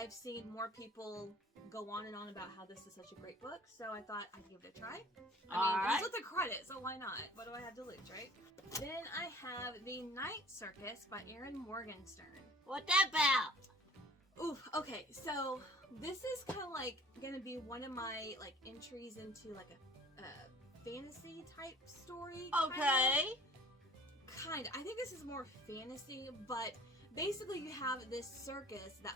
seen more people go on and on about how this is such a great book, so I thought I'd give it a try. I mean, it's with the credit, so why not? What do I have to lose, right? Then I have The Night Circus by Erin Morgenstern. What that about? Oof, okay, so this is kind of like gonna be one of my like entries into like a fantasy type story. Okay. Kind. I think this is more fantasy, but basically you have this circus that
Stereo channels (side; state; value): both; normal; correlation 0.48